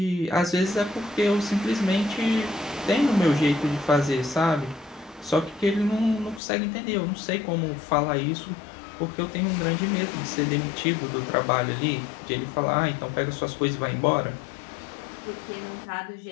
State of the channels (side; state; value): right; drops out; at 6.4 s